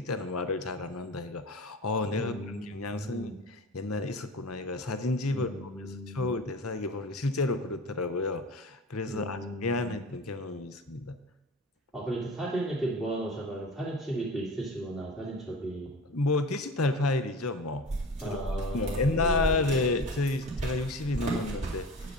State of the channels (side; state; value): both; normal; correlation 0.35